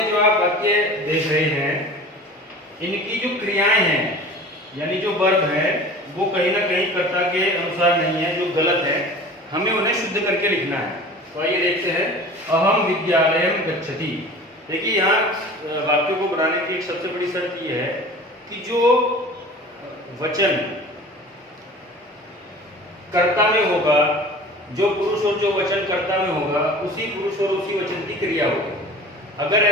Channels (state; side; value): normal; both; correlation 0.40